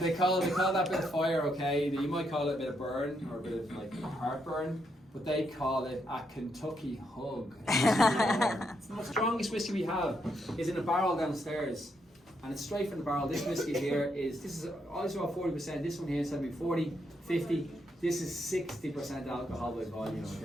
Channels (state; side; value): normal; both; correlation 0.78